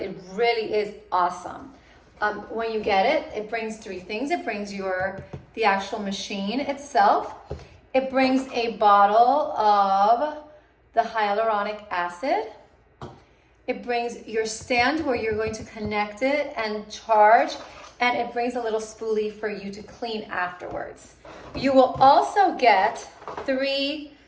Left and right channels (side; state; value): both; identical; correlation 1.00